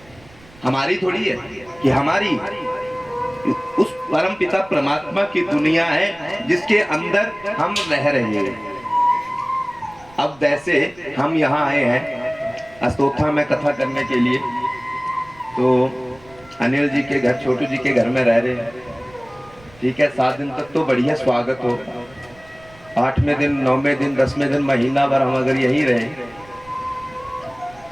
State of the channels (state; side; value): noise; right; rumble, 25 dB below the sound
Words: हमारी थोड़ी है कि हमारी, उस परम पिता परमात्मा की दुनिया है जिसके अंदर हम रह रहे हैं। अब वैसे हम यहाँ आए हैं अस्तोथा में कथा करने के लिए, तो अनिल जी के घर, छोटू जी के घर में रह रहे हैं। ठीक है, 7 दिन तक तो बढ़िया स्वागत हो, 8वें दिन, 9वें दिन, 10वें दिन, महीना भर हम अगर यहीं रहे,